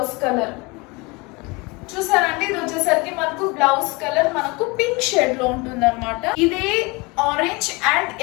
కలర్. చూసారండి, ఇది వచ్చేసరికి మనకు బ్లౌజ్ కలర్ మనకు పింక్ షేడ్ లో ఉంటుంది అనమాట. ఇదే orange and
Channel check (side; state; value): right; quieter; 26.2 dB